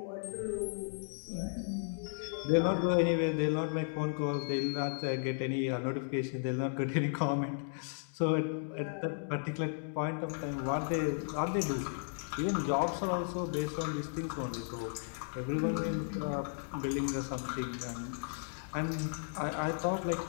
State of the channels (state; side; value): silent; right; digital silence